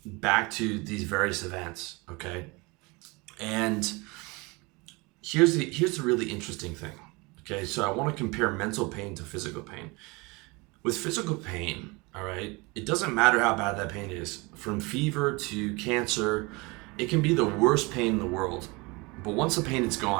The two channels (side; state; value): left; quieter; 26.1 dB